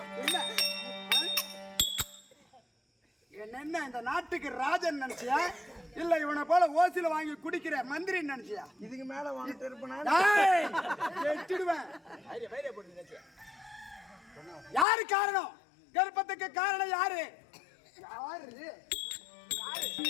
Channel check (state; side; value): drops out; right; at 14.9 s